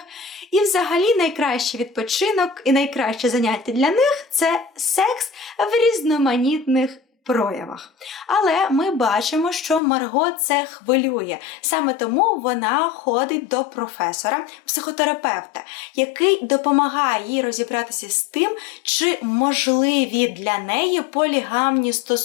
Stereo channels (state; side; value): drops out; right; at 9.8 s